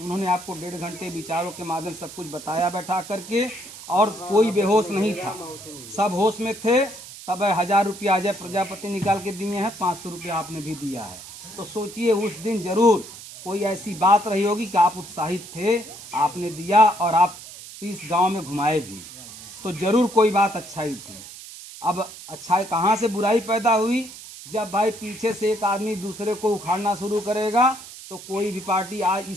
उन्होंने आपको 1.5 घंटे विचारों के माध्यम सब कुछ बताया बैठा करके, और कोई बेहोश नहीं था, सब होश में थे। तब 1000 रुपया अजय प्रजापति निकाल के दिए हैं, 500 रुपया आपने भी दिया है। तो सोचिए उस दिन जरूर कोई ऐसी बात रही होगी कि आप उत्साहित थे, आपने दिया और आप 30 गांव में घुमाए भी, तो जरूर कोई बात अच्छाई थी। अब अच्छाई कहाँ से बुराई पैदा हुई? जब भाई पीछे से एक आदमी दूसरे को उखाड़ना शुरू करेगा तो कोई भी पार्टी आज,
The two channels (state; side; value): noise; right; hiss, 15 dB below the sound